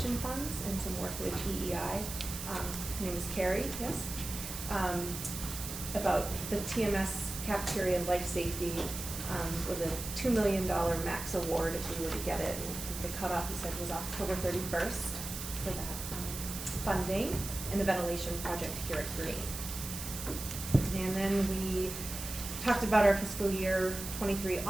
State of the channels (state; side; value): noise; right; hiss, 7 dB below the sound